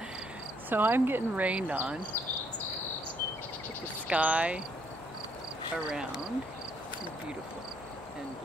So I'm getting rained on with the sky around. It's beautiful and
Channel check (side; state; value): both; normal; correlation 0.69